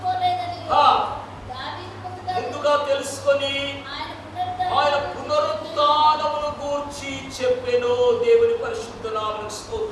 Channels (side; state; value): both; identical; correlation 1.00